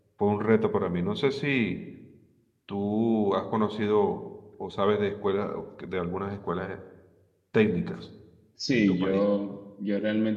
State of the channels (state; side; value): identical; both; correlation 1.00